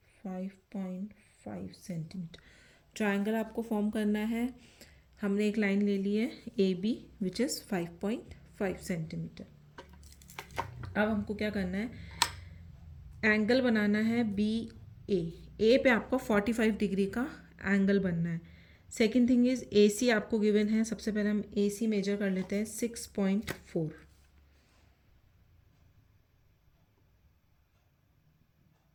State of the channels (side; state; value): both; identical; correlation 1.00